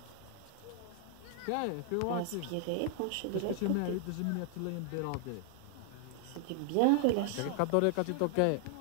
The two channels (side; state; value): both; different; correlation 0.00